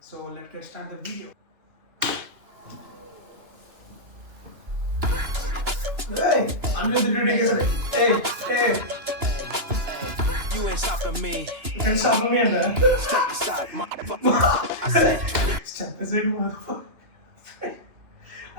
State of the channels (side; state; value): left; late; 2.9 ms